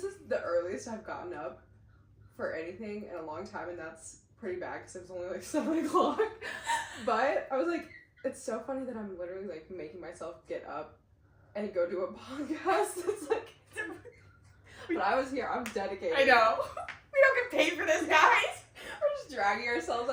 is the earliest I've gotten up for anything in a long time, and that's pretty bad because it was only like 7 o'clock. But I was like, it's so funny that I'm literally like making myself get up and go do a podcast. It's like, but I was here. I'm dedicated. I know. We don't get paid for this, guys. We're just dragging ourselves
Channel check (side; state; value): both; identical; correlation 1.00